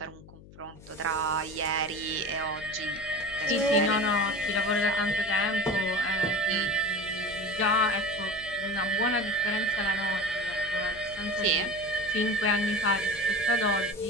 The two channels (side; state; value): left; noise; hum, 20 dB below the sound